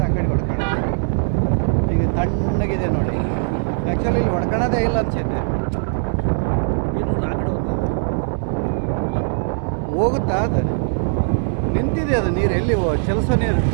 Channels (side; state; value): left; silent; 66 dB below the other